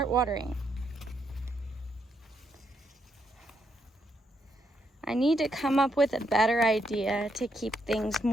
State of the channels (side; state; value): both; normal; correlation 0.77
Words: watering. I need to come up with a better idea to keep things